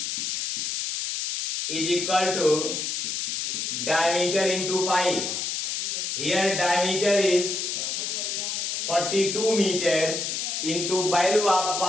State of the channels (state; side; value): noise; left; hiss, 2 dB below the sound